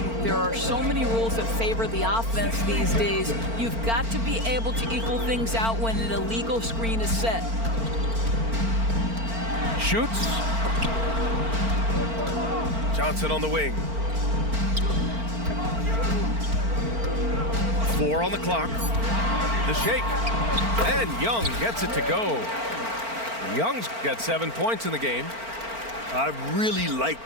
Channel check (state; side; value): late; left; 4.4 ms